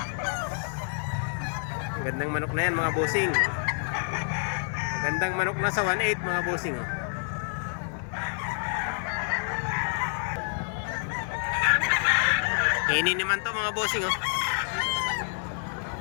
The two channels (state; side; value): silent; right; 56 dB below the other